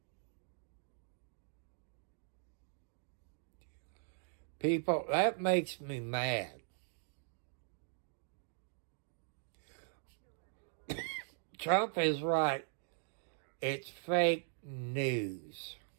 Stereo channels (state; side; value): silent; left; digital silence